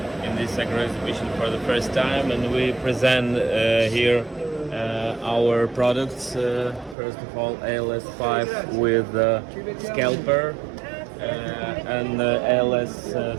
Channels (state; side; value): drops out; left; at 7.0 s